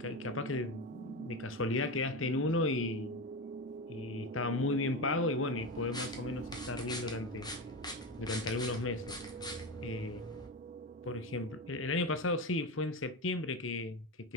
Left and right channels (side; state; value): both; normal; correlation 0.19